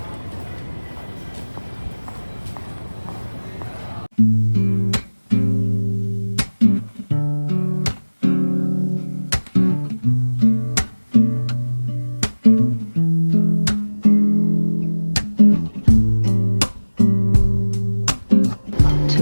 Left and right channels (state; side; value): inverted; both; correlation -1.00